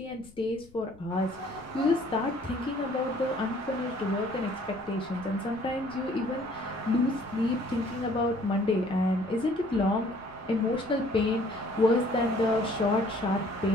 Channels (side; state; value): left; noise; rumble, 26 dB below the sound